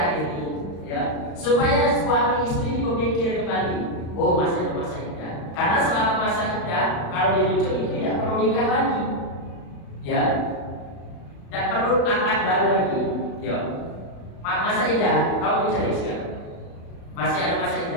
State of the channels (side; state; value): right; late; 35 ms